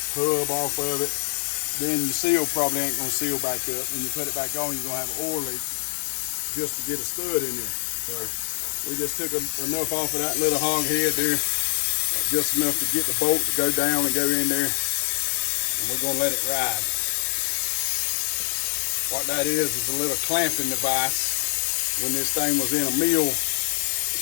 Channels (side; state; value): right; silent; digital silence